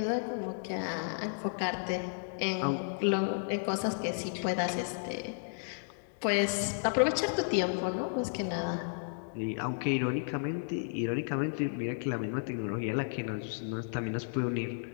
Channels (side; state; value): right; silent; digital silence